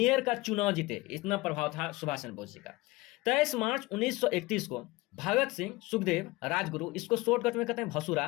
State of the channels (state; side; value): quieter; right; 21.4 dB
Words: का चुनाव जीते, इतना प्रभाव था सुभाष चंद्र बोस जी का। 23 मार्च 1931 को भगत सिंह, सुखदेव, राजगुरु, इसको शॉर्टकट में कहते हैं